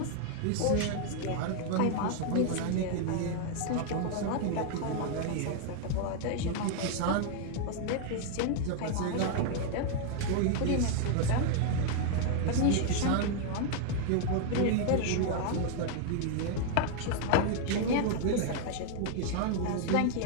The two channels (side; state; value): both; different; correlation 0.00